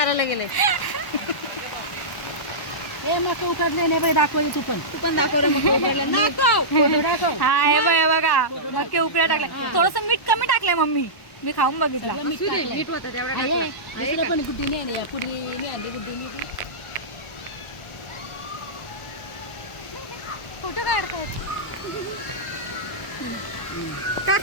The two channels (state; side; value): late; right; 1.1 ms